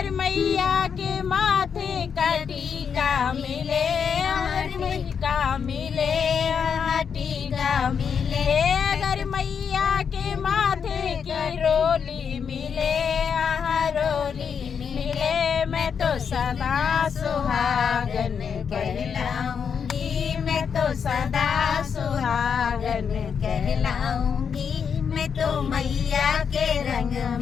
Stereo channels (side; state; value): right; quieter; 6.8 dB